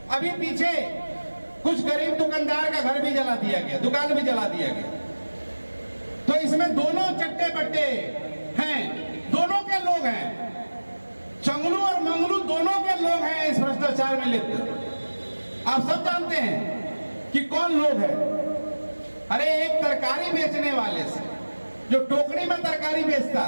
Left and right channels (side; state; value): both; inverted; correlation -1.00